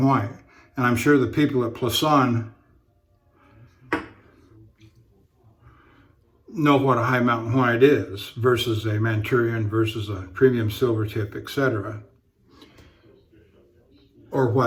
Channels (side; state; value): both; identical; correlation 1.00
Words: White. And I'm sure the people at Plisson know what a High Mountain White is versus a Manchurian versus a premium silver tip, etc. Or